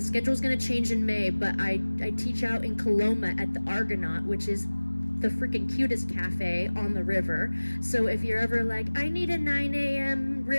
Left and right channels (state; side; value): inverted; both; correlation -1.00